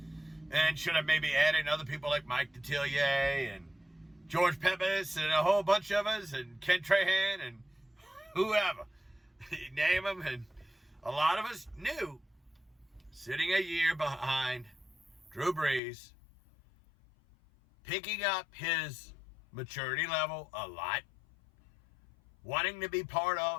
And should have maybe added other people like Mike Detillier and George Pepis and a whole bunch of us and Ken Trahan and whoever. You name them. And a lot of us knew, sitting a year behind Drew Brees, picking up his maturity level a lot, wanting to be part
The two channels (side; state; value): right; drops out; at 15.8 s